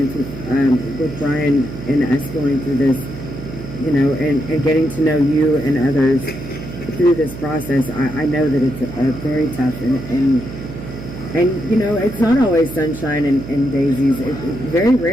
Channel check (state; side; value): noise; right; hum, 11 dB below the sound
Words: with Brian and us going through this, and getting to know you and others through this process, I know that it's very tough, and it's not always sunshine and daisies. Very